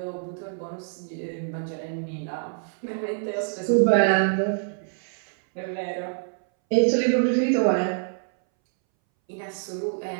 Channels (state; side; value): silent; left; 61 dB below the other